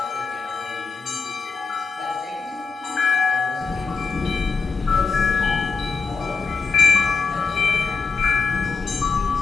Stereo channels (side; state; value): right; quieter; 4.6 dB